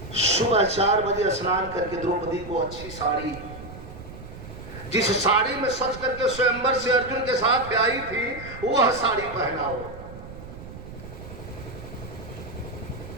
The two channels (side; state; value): right; noise; rumble, 13 dB below the sound